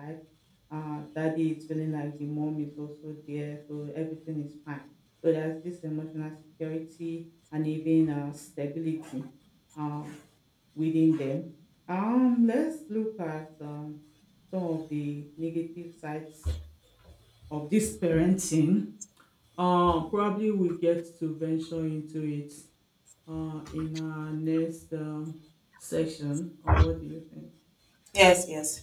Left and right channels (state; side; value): identical; both; correlation 1.00